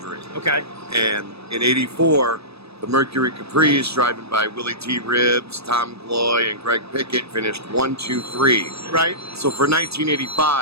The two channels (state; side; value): late; left; 0.78 ms